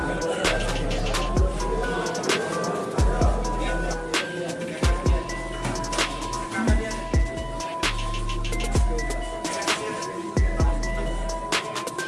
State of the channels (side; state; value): both; identical; correlation 1.00